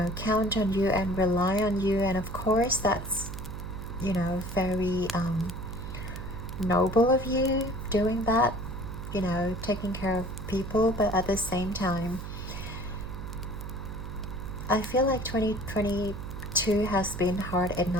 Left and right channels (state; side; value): noise; right; hum, 8 dB below the sound